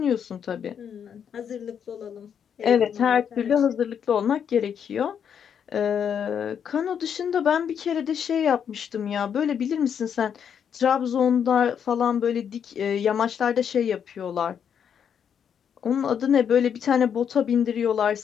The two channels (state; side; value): quieter; right; 8.0 dB